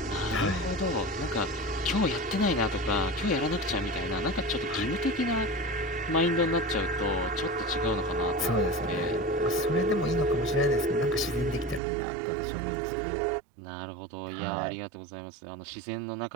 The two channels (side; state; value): left; drops out; at 11.8 s